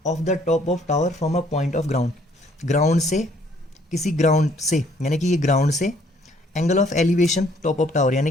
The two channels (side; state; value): both; normal; correlation 0.63